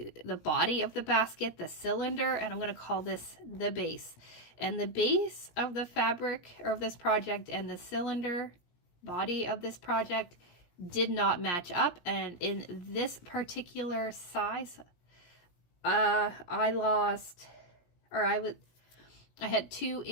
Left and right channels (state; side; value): late; right; 17 ms